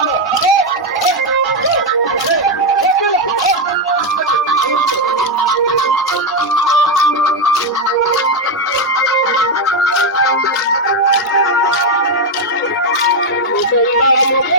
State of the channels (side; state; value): both; normal; correlation 0.05